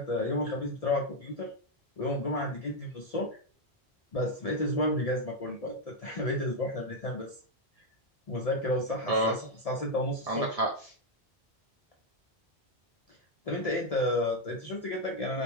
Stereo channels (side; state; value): both; normal; correlation 0.03